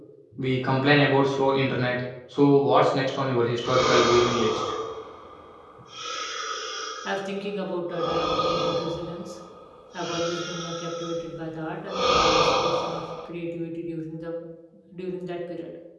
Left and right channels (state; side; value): identical; both; correlation 1.00